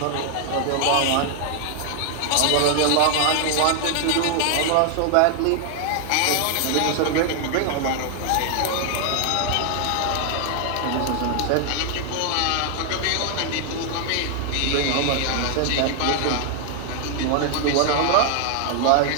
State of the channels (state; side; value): different; both; correlation 0.00